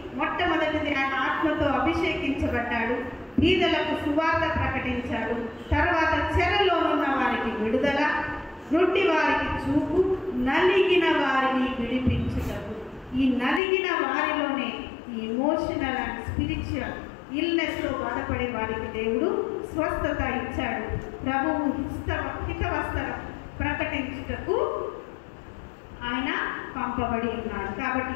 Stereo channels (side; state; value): right; drops out; at 13.6 s